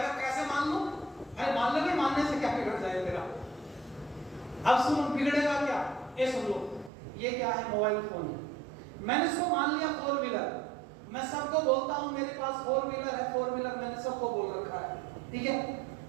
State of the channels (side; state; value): left; drops out; at 6.9 s